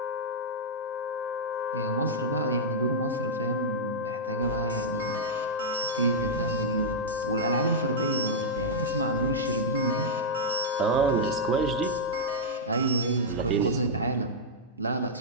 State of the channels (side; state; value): both; normal; correlation -0.07